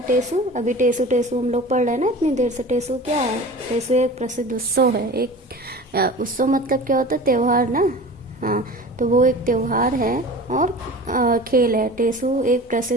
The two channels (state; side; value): normal; both; correlation 0.37